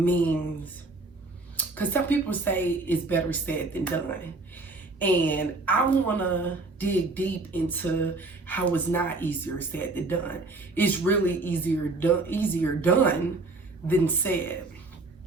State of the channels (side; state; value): left; quieter; 3.3 dB